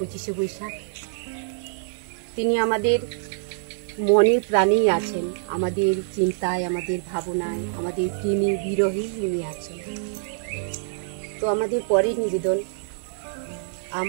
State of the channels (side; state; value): left; silent; digital silence